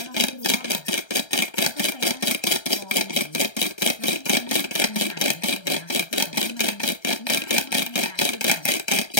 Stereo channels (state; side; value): late; right; 1.3 ms